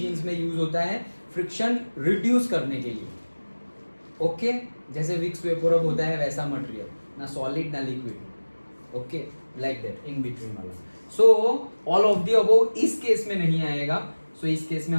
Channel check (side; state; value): both; inverted; correlation -1.00